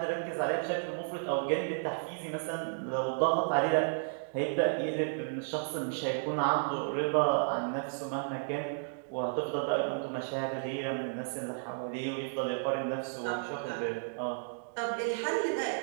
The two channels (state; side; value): silent; left; digital silence